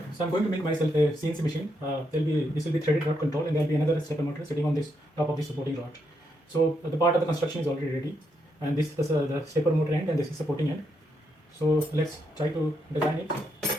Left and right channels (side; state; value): both; normal; correlation 0.79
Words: So I'm going to make myself a CNC machine. This will be threaded rod control, and there will be another stepper motor sitting on this top of this supporting rod. So the part of the construction is already ready, and this is the stepper motor end, and this is supporting end. So let's try to design it